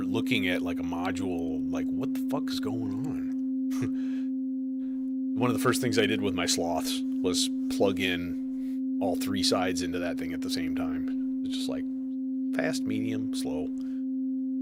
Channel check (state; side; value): identical; both; correlation 1.00